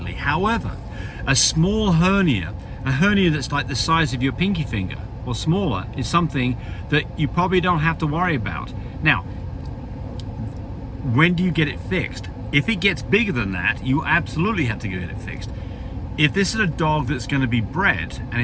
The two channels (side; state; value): both; identical; correlation 1.00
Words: However, a small hernia, a hernia that's like the size of your pinky finger or smaller, is something that you probably don't have to worry about. Now, when do you get it fixed? If it gets bigger than that, you absolutely have to get it fixed. If this is a dog that's going to be bred and